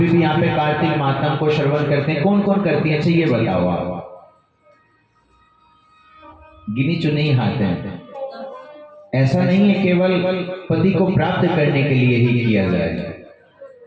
भी यहाँ पे कार्तिक मातम को श्रवण करते हैं। कौन कौन करती है? अच्छा ये बताओ आप। गिनी चुनी हाथ हैं। ऐसा नहीं है केवल पति को प्राप्त करने के लिए ही किया जाए।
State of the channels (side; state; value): both; identical; correlation 1.00